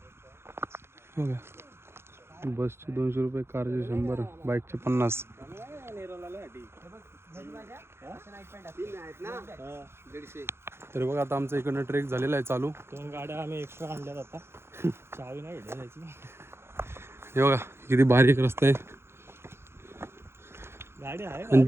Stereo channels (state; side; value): late; left; 0.12 ms